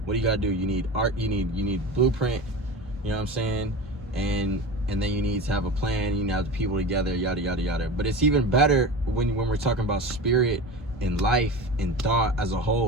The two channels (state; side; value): normal; both; correlation 0.30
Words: what do you gotta do? You need art, you need blueprint, and then you need to have a plan, you need to have the people together, yada yada yada. But it's even better when we're talking about spirit and life and thought as a